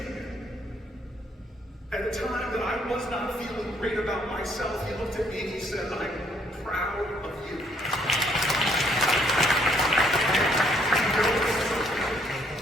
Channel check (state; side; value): normal; both; correlation 0.67